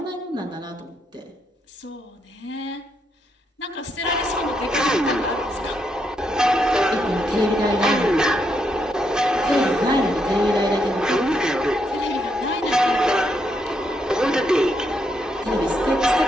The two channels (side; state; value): both; normal; correlation 0.78